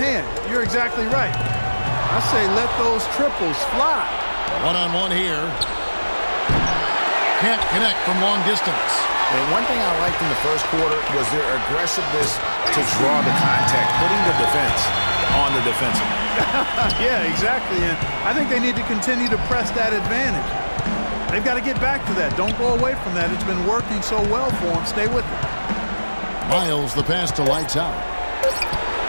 You're exactly right. I say let those triples fly. One-on-one here. Can't connect from long distance. And one thing I liked in the first quarter was their aggressiveness to draw the contact, putting the defense on the defensive. Yeah, exactly. And I think they need to continue to press that advantage. They've got to get back to that. Don't go away from that. It's been working so well for them. Stay with it. Miles the pass to Lights Out.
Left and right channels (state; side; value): inverted; both; correlation -1.00